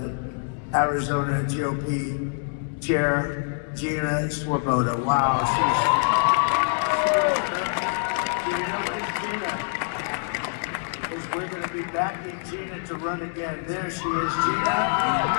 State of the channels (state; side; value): silent; right; 62 dB below the other